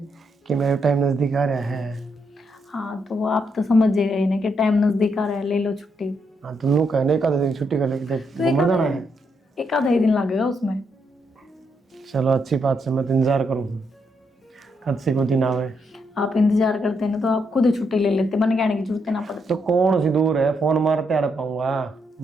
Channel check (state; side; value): normal; both; correlation 0.78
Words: कि मेरा टाइम नज़दीक आ रहा है। हाँ तो वो आप तो समझ ही गए ना कि टाइम नज़दीक आ रहा है ले लो छुट्टी। हाँ तुम लोग कहने 1 दिन छुट्टी कर लेके तो घूमने जाना है 1 आधा ही दिन लगेगा उसमें। चलो अच्छी बात से मैं तो इंतजार करूँ कद से कोई दिन आवे। आप इंतजार करते हैं ना तो आप खुद ही छुट्टी ले लेते मन कहने की जरूरत ना पड़ती। तो कौन सी दूर है फोन मारते आ पाऊंगा